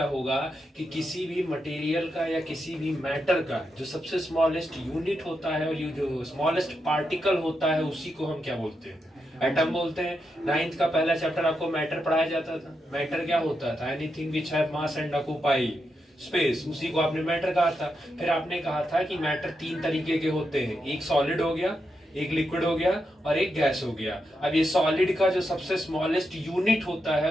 होगा कि किसी भी मटेरियल का या किसी भी मैटर का जो सबसे स्मॉलेस्ट यूनिट होता है और ये जो स्मॉलेस्ट पार्टिकल होता है उसी को हम क्या बोलते हैं, एटम बोलते हैं। 9th का पहला चैप्टर आपको मैटर पढ़ाया जाता था। मैटर क्या होता था, anything which have mass and occupy space, उसी को आपने मैटर कहा था। फिर आपने कहा था कि मैटर 3 तरीके के होते हैं, एक सॉलिड हो गया, एक लिक्विड हो गया और एक गैस हो गया। अब ये सॉलिड का जो सबसे स्मॉलेस्ट यूनिट होता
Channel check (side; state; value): both; normal; correlation 0.85